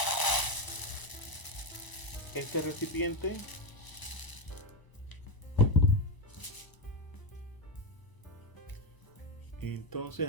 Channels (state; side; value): late; right; 1.0 ms